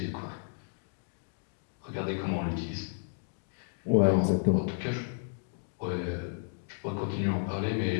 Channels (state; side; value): silent; right; digital silence